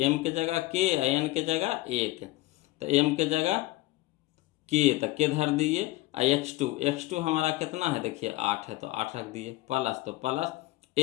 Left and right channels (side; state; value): right; quieter; 18.8 dB